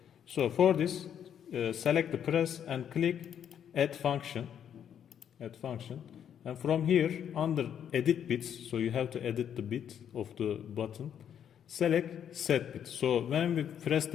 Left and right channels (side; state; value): right; quieter; 9.0 dB